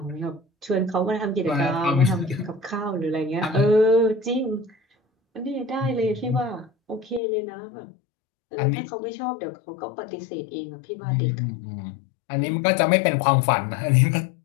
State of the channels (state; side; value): drops out; right; at 7.2 s